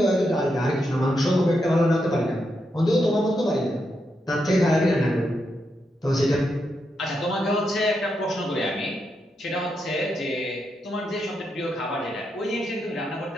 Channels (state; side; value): normal; both; correlation 0.83